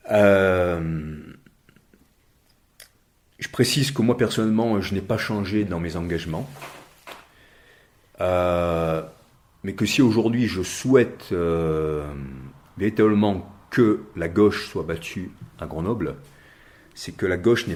Je précise que moi, personnellement, je n'ai pas changé dans mes engagements. Mais que si aujourd'hui je souhaite véritablement que la gauche soit battue à Grenoble, c'est que la gauche n'est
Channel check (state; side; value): identical; both; correlation 1.00